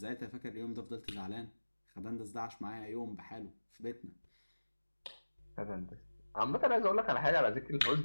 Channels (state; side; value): inverted; both; correlation -1.00